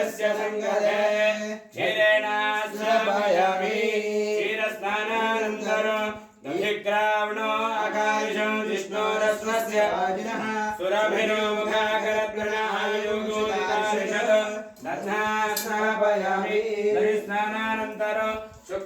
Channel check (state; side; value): identical; both; correlation 1.00